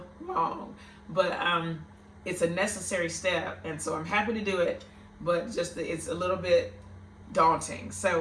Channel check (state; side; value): identical; both; correlation 1.00